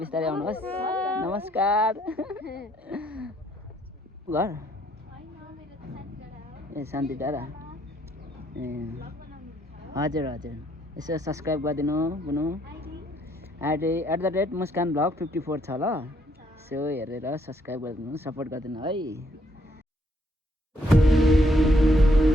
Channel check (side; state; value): both; normal; correlation 0.70